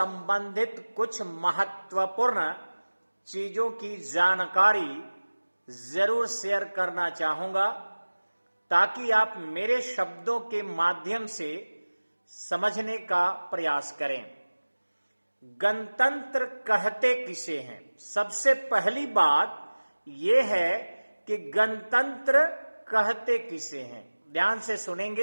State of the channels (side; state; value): both; inverted; correlation -1.00